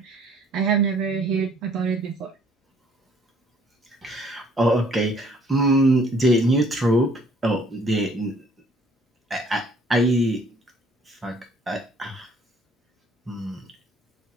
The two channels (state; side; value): normal; both; correlation 0.60